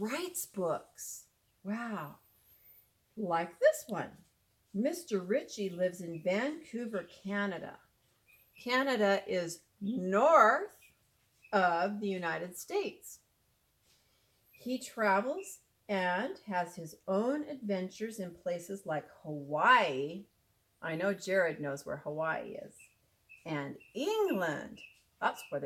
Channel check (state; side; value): identical; both; correlation 1.00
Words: books. Wow. Like this one. Mr. Ritchie lives in Vancouver, Canada. Canada is north of the United States. He travels and has his own adventures in places like Hawaii. I know Jared knows where Hawaii is. And England. That's where